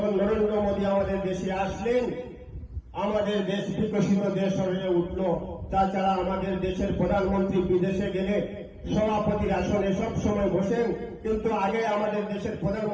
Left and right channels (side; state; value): both; identical; correlation 1.00